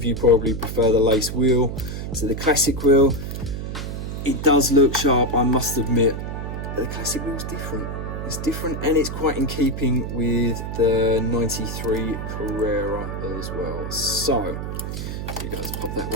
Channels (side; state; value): right; noise; hum, 5 dB below the sound